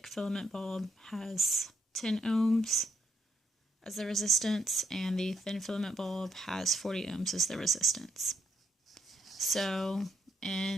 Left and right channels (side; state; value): both; normal; correlation 0.77